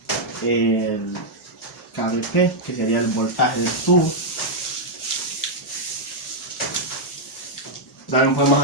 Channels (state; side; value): normal; both; correlation -0.05